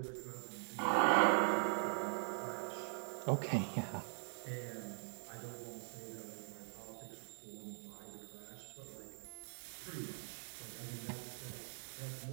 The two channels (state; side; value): silent; left; digital silence